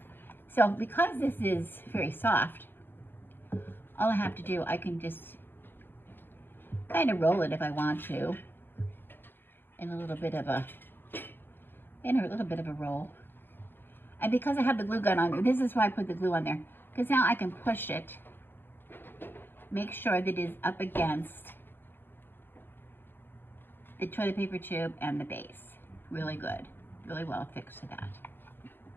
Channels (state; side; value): late; right; 0.10 ms